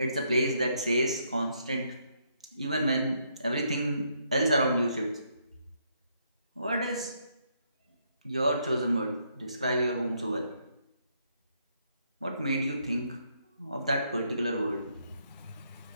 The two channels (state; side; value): inverted; both; correlation -0.74